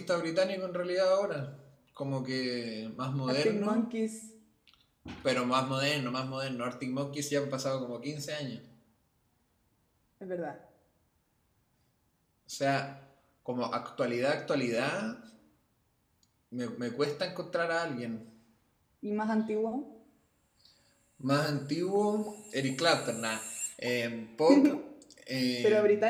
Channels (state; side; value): identical; both; correlation 1.00